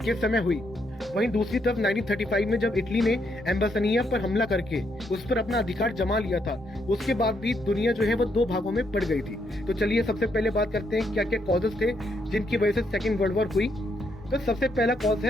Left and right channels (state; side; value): normal; both; correlation 0.76